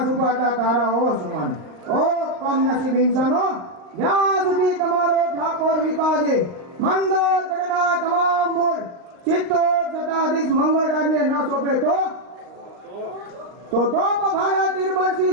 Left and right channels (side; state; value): left; late; 39 ms